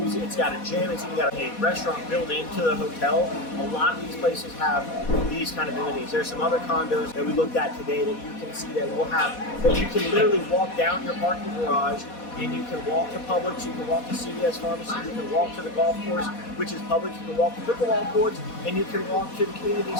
it's got a gym, it's even got a restaurant built into the hotel. A lot of these places have these kind of amenities. There's some other condos that we looked at today that you can see that you can literally walk down your parking garage, and you can walk to Publix, you can walk to CVS Pharmacy, you can walk to the golf course, which is Publix, you can walk to pickleball courts, and you can walk to the community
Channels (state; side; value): late; right; 4.1 ms